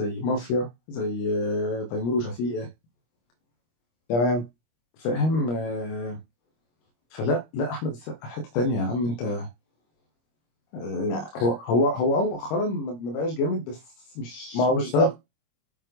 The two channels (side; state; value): right; late; 25 ms